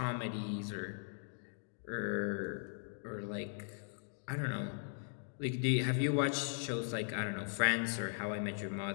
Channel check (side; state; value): right; silent; digital silence